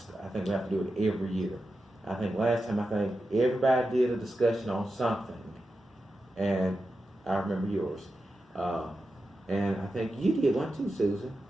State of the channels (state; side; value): normal; both; correlation 0.90